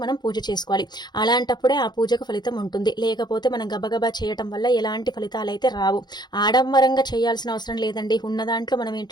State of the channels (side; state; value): right; late; 0.21 ms